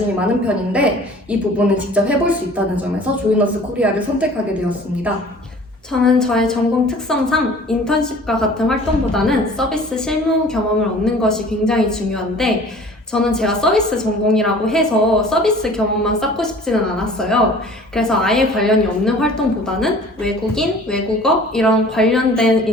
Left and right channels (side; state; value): both; normal; correlation 0.47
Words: 많은 편인데 이 부분을 직접 해볼 수 있다는 점에서 조이너스 코리아를 선택하게 되었습니다. 저는 저의 전공 특성상 인턴십과 같은 활동보다는 서비스 실무 경험을 얻는 것이 굉장히 중요한데 저는 제가 서비스 전공이라고 해서 서비스 경험만 쌓고 싶지는 않았어요. 그래서 아예 관련이 없는 활동보다는 외국인, 외국어 이런 관련된